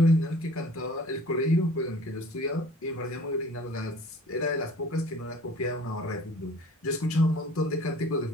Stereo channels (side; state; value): both; normal; correlation 0.48